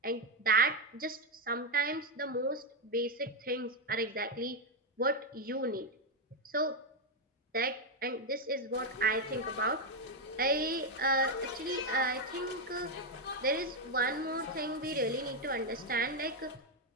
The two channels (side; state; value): both; normal; correlation 0.03